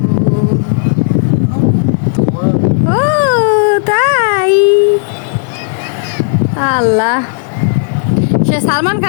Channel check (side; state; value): right; silent; digital silence